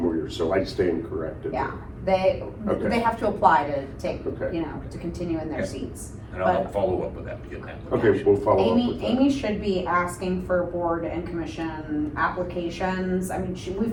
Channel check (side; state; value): both; identical; correlation 1.00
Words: years, so I stand corrected. Yeah, Okay. they have to apply to take, Okay. to continue in their Okay. seats. And I'll follow up with that, getting that. Okay, we'll follow up Amy, with that. Amy should be asking for board and commission applications. I mean,